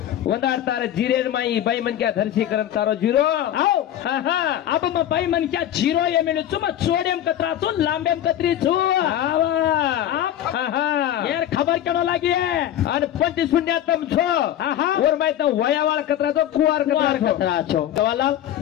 वंदार तार जिरेर माई बाई मन क्या धरसी करम तारो झिरो आओ हा हा अब म बाई मन क्या झिरो ये मिलु छु म छोडेम कतरा छु लांबेम कतरी छु आवा हा हा यार खबर केनो लागी है आणि 25 शून्य तम छो हा हा और मैं तो वयावाळ कतरा तो कुवार कुवार कतरा कतरा छो सवाल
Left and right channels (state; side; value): quieter; right; 11.5 dB